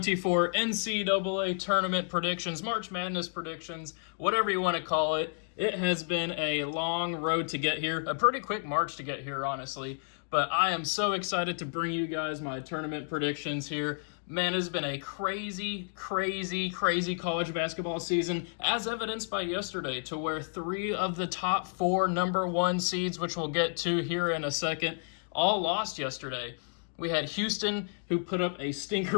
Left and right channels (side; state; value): right; silent; digital silence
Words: NCAA Tournament predictions, March Madness predictions, whatever you want to call it. It has been a long road to get here, a pretty quick march to get here, honestly, but I am so excited to bring you guys my tournament predictions here. Man, it's been a crazy college basketball season, as evidenced by yesterday, to where 3 of the top 4 number 1 seeds, which we'll get to here in a second, all lost yesterday. We had Houston, who put up a